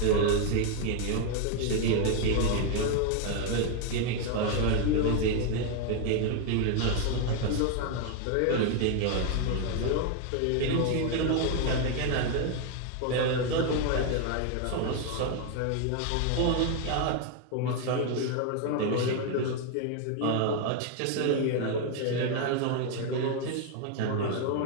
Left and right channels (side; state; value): both; different; correlation 0.01